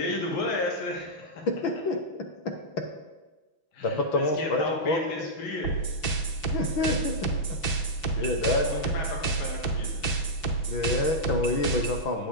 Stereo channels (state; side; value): late; right; 6.0 ms